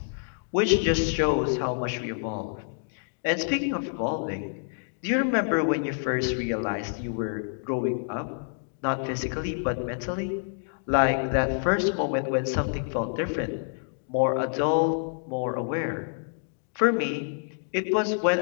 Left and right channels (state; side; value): silent; right; digital silence